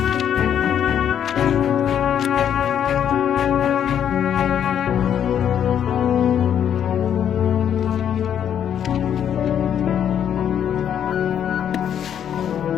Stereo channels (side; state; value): right; quieter; 9.2 dB